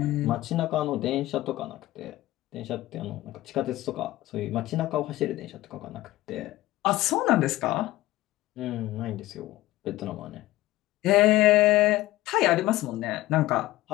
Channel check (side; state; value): right; quieter; 16.9 dB